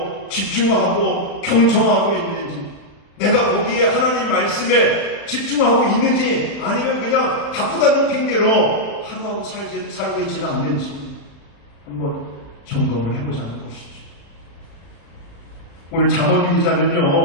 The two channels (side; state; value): right; late; 35 ms